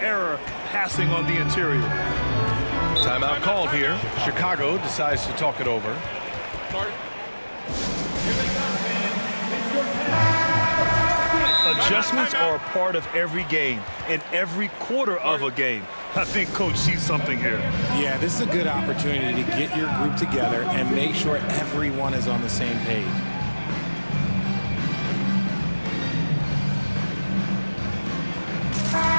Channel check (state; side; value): inverted; both; correlation -1.00